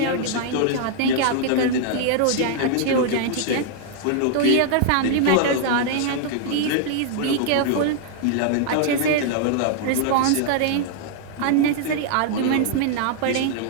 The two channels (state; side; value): different; both; correlation -0.01